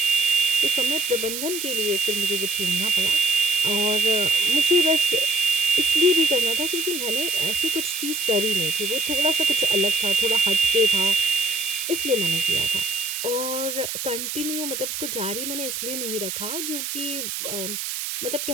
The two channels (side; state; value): right; noise; hiss, 5 dB below the sound